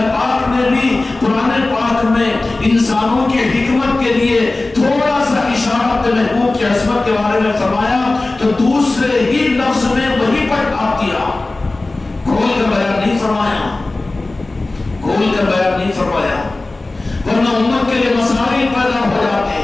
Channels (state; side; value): quieter; right; 3.1 dB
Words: پاک نے بھی قرآن پاک میں انسانوں کی حکمت کے لیے تھوڑا سا اشارہ اپنے محبوب کی عظمت کے بارے میں فرمایا تو دوسرے ہی لفظ میں وہی پر ڈھانپ دیا، کھول کر بیان نہیں فرمایا، کھول کر بیان نہیں فرمایا، ورنہ امت کے لیے مسائل پیدا ہو جاتے